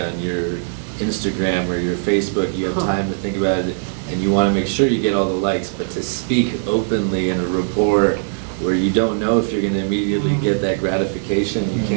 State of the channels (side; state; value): left; silent; digital silence